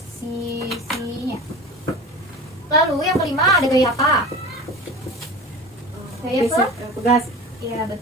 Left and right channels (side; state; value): both; normal; correlation 0.34